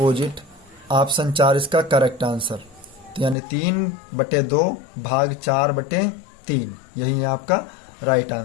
ऑप्शन 4 इसका करेक्ट आंसर। तो यानी 3/2 भाग 4/3 यही है आपका राइट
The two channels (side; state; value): right; drops out; at 3.4 s